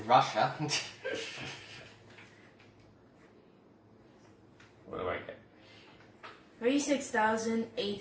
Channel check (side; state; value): both; identical; correlation 1.00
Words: Russia. what do I get?